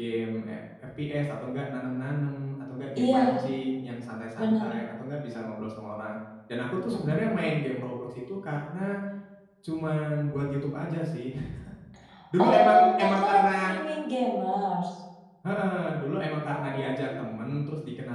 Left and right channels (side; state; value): both; identical; correlation 1.00